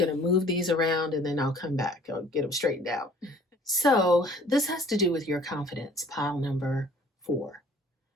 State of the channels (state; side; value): normal; both; correlation 0.53